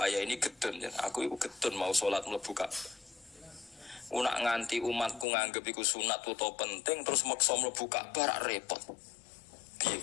ini gedun, aku itu gedun mau sholat mlebu Ka'bah. Nak nganti umatku nganggep iku sunat utawa penting terus maksa mlebu Ka'bah rak repot. Piye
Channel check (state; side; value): drops out; right; at 5.2 s